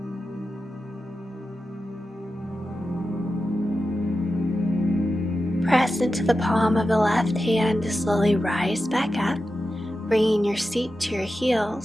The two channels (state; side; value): normal; both; correlation 0.91